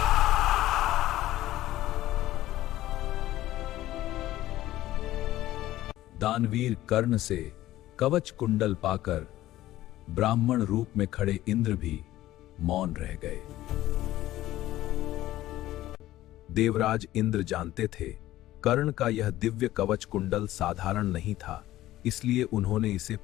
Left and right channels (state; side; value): quieter; right; 15.1 dB